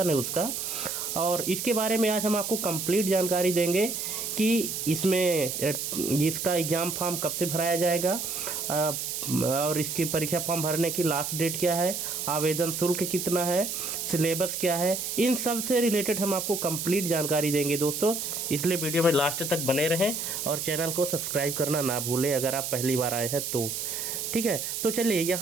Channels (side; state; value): right; noise; hiss, 4 dB below the sound